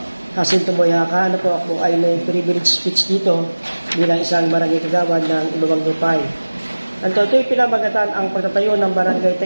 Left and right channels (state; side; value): inverted; both; correlation -1.00